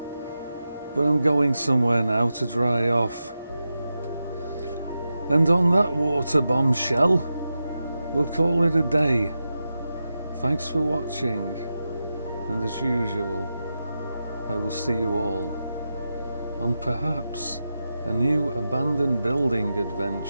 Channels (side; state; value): both; inverted; correlation -0.90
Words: but I'm going somewhere now to dry off. And on that water bombshell, we'll call it a day. Thanks for watching, and as usual, I will see you all on perhaps a new abandoned building